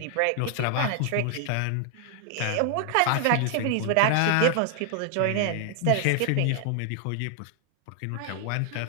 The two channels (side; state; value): both; different; correlation 0.00